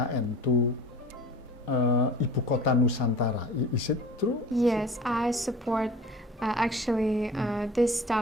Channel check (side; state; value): both; normal; correlation 0.42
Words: to Ibu Kota Nusantara. Is it true? Yes, I support actually this